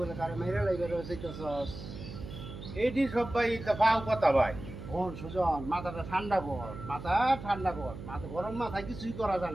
কারো মেরে লাগবে রয়েছেস? এইটি সব ভাই তা পাও কথা ভাই। শোন সুজন, মাথাটা ঠান্ডা কর, মাথা ঠান্ডা কর, মাথা গরম মাথায় কিছুই করা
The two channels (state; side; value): noise; right; hum, 11 dB below the sound